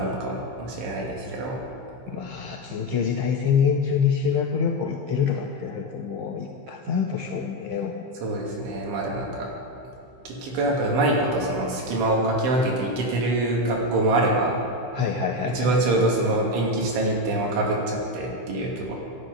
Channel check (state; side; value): late; left; 15 ms